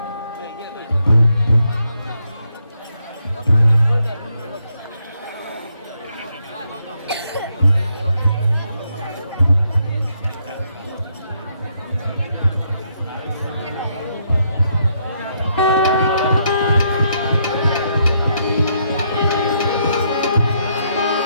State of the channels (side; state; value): both; inverted; correlation -0.76